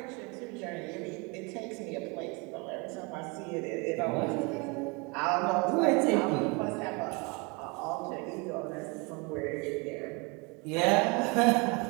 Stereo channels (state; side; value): quieter; left; 29.5 dB